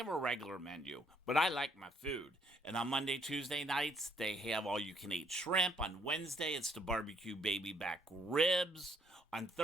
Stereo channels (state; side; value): normal; both; correlation 0.67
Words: a regular menu, but I like my food. And on Monday, Tuesday nights, they have all you can eat shrimp. On Wednesday, it's the barbecue baby back ribs. On